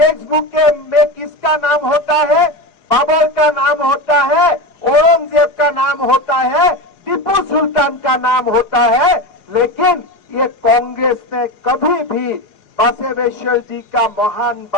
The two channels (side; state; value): right; late; 4.8 ms